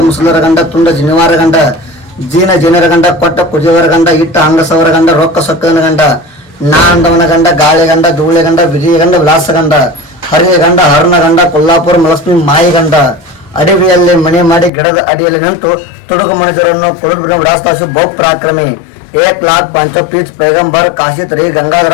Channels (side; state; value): right; drops out; at 14.7 s